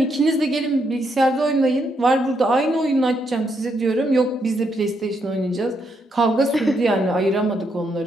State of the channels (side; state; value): both; normal; correlation 0.77